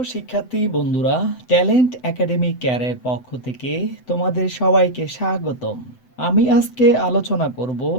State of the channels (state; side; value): late; right; 7.9 ms